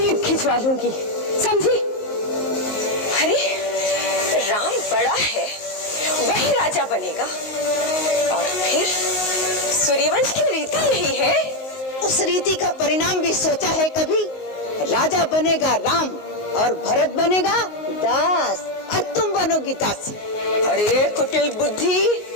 खिंचवा लूंगी, समझी? अरे राम बड़ा है, वही राजा बनेगा, और फिर सूर्यवंश की रीति यही है। उस रीति का परिणाम भी सोचा है कभी? राजा बनेगा राम और भरत बनेगा दास, और तुम बनोगी दासी। अरे कुटिल बुद्धि,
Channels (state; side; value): late; right; 19 ms